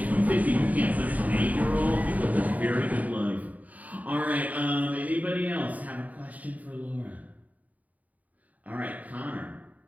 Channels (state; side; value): late; left; 0.073 ms